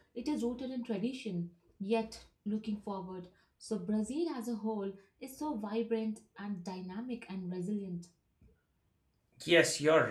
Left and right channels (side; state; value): both; identical; correlation 1.00